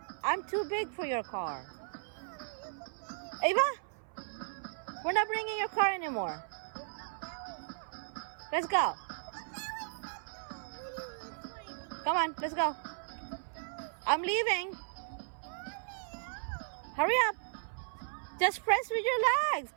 I'm too big for your car. Ava? We're not bringing your car anymore. Let's go. Come on, let's go. I'm leaving. Hurry up. Just press with your legs.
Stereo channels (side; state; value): left; silent; 54 dB below the other